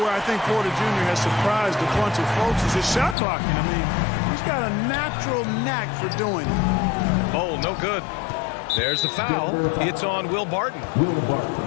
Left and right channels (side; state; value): right; drops out; at 3.2 s